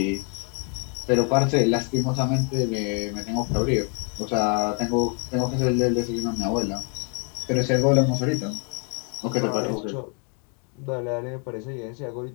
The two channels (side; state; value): right; quieter; 38.8 dB